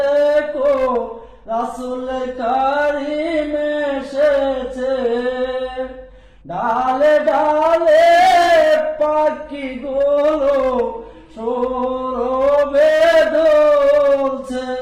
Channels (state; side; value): identical; both; correlation 1.00